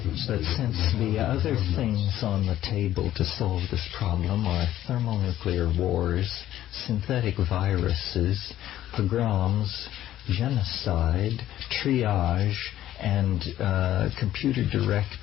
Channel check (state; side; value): quieter; right; 13.0 dB